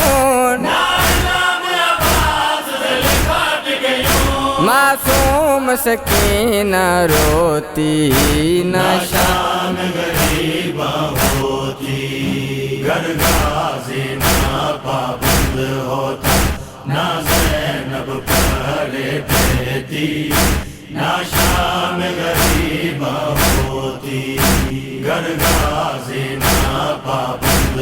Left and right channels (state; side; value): identical; both; correlation 1.00